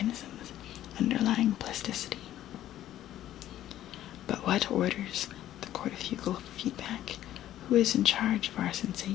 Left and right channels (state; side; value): quieter; right; 12.7 dB